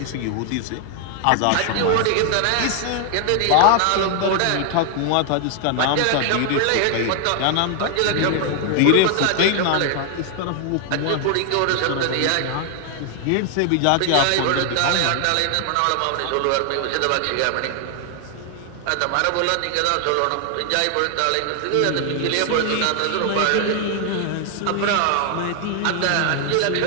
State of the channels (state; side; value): different; both; correlation 0.00